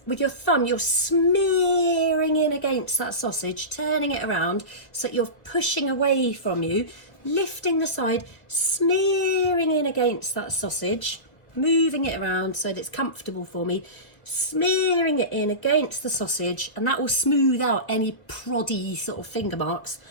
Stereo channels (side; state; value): right; late; 2.2 ms